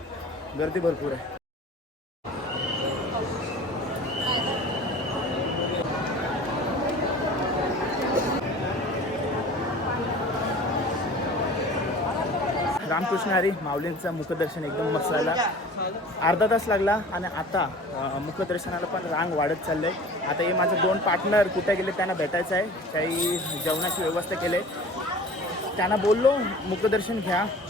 गर्दी भरपूर आहे. रामकृष्ण हरी. माऊलींचं मुखदर्शन एकदम मस्त झाला. अर्धा तास लागला आणि आता मुखदर्शनाला पण रांग वाढत चाललं आहे. आता हे माझे 2 पार्टनर कुठे गेले त्यांना भेटायचं आहे. काही जेवणाची व्यवस्था केली आहे. त्यांना बोललो मुखदर्शन घ्या,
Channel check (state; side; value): normal; both; correlation 0.42